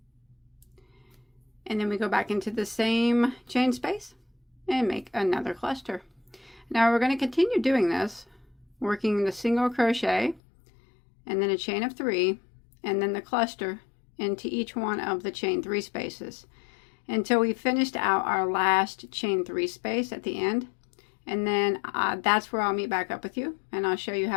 and then we go back into the same chain space and make another cluster. Now we're going to continue doing this, working the single crochet and then a chain of 3 and then the cluster into each one of the chain 3 spaces until we finished out our last chain 3 space at the end, and then that's where I'll meet back up with you and I'll show you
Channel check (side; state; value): right; drops out; at 10.4 s